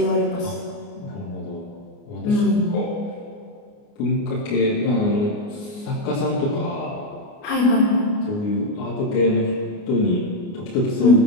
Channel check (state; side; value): late; right; 29 ms